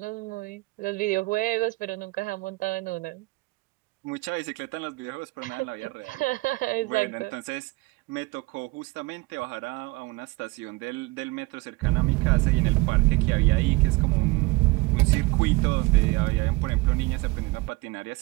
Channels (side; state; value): left; quieter; 23.6 dB